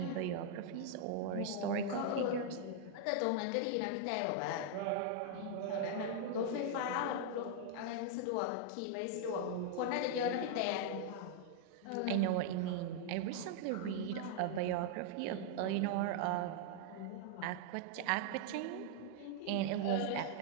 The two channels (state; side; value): different; both; correlation -0.01